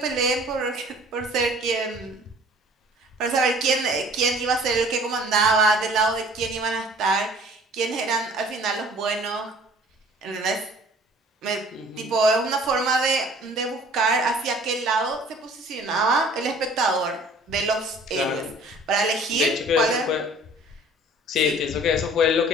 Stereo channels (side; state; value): both; normal; correlation 0.51